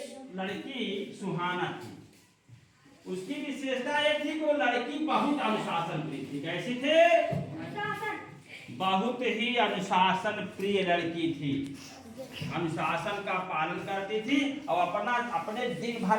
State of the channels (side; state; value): both; identical; correlation 1.00